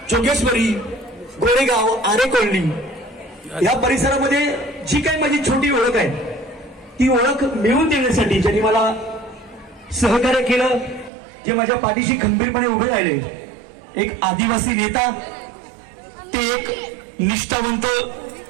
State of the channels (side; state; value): left; drops out; at 11.1 s